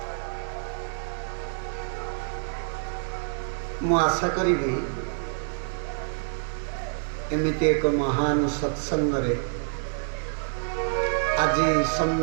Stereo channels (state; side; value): silent; left; 60 dB below the other